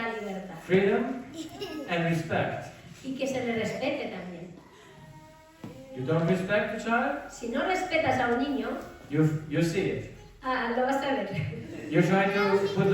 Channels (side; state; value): both; identical; correlation 1.00